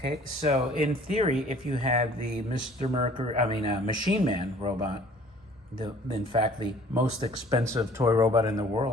so in theory, if you had the Machine Man robot, in fact, the most expensive toy robot in the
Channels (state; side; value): normal; both; correlation 0.53